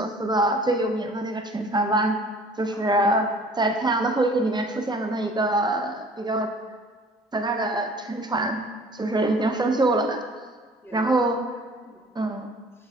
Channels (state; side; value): normal; both; correlation 0.50